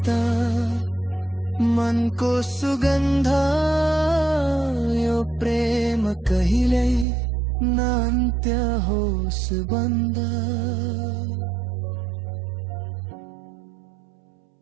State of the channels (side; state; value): left; drops out; at 7.1 s